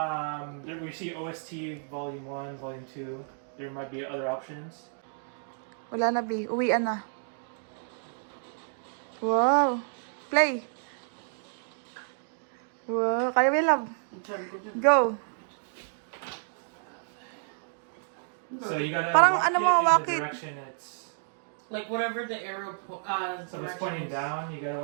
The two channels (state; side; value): silent; left; digital silence